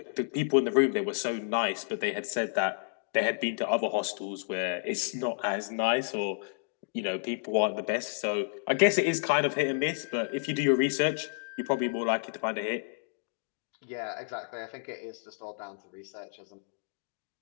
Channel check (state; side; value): silent; right; digital silence